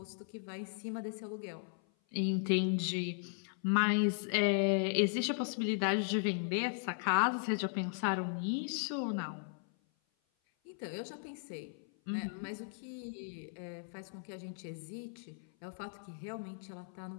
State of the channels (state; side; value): silent; right; 53 dB below the other